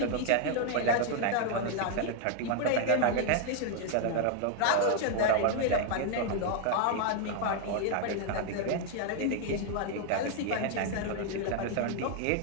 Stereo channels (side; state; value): both; different; correlation 0.00